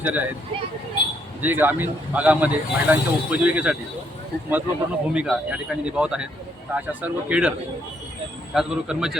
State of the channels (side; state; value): both; normal; correlation 0.72